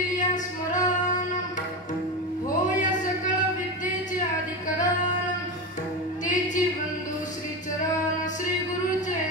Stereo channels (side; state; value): both; normal; correlation 0.20